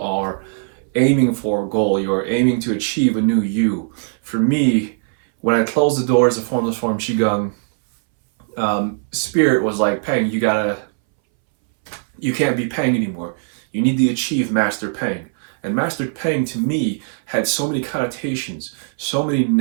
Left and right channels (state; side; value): silent; left; 63 dB below the other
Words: aiming for a goal. You are aiming to achieve a new you. For me, when I closed the doors of Formless Form Qigong, Spirit was like, Peng, you can't be Peng anymore. You need to achieve Master Peng. And Master Peng to me had so many connotations, so many